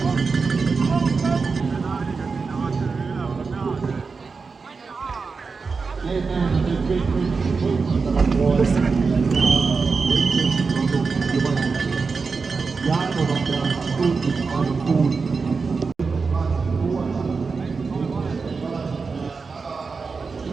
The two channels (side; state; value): left; quieter; 4.7 dB